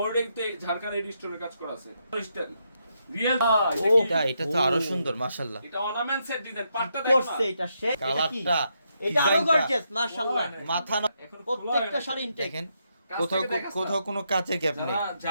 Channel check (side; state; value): both; inverted; correlation -0.80